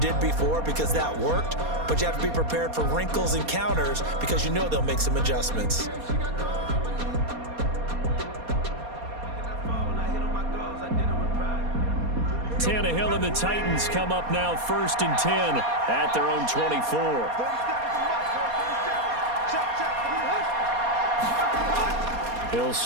before because that worked, but you have to be prepared for wrinkles and counters because you know they'll make some adjustments. Tannehill and the Titans come up now 1st and 10 at their own 24. He'll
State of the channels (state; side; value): late; left; 4.2 ms